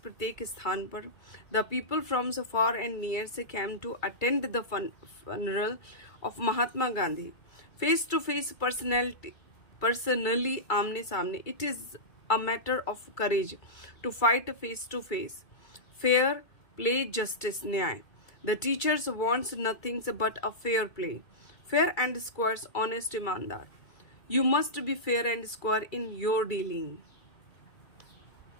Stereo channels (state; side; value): late; right; 2.3 ms